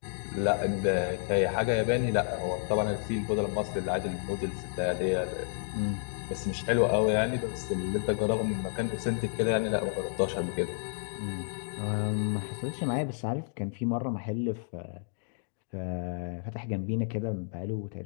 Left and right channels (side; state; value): right; silent; digital silence